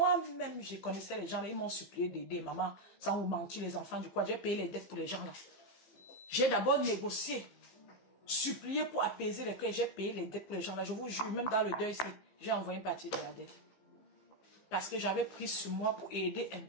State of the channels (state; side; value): late; right; 15 ms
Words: je connaissais les gens là, ils m'ont supplié d'aider maman, sans vous mentir, les enfants du quoi. J'ai payé les dettes pour les gens là. J'ai d'abord négocié, supplié pour apaiser les cœurs, j'ai payé les dettes pour les gens là. Je vous jure, même dans le deuil ici, j'ai envoyé une partie de la dette. Parce que j'avais pris sur moi pour aider un